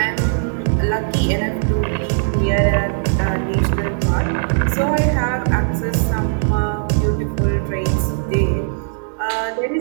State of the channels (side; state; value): left; silent; digital silence